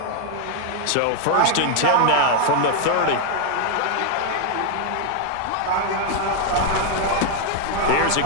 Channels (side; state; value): both; different; correlation 0.00